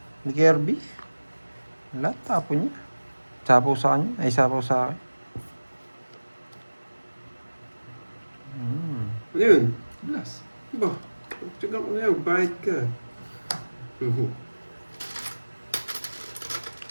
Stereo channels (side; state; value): both; inverted; correlation -1.00